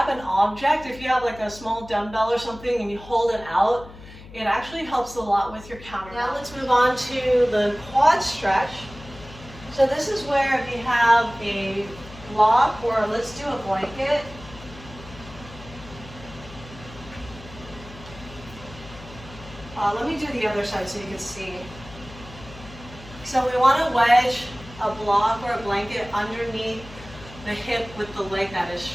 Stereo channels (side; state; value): left; noise; hum, 17 dB below the sound